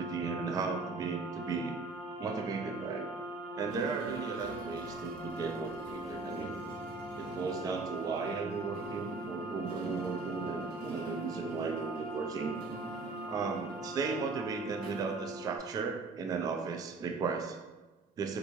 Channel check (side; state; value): left; quieter; 3.8 dB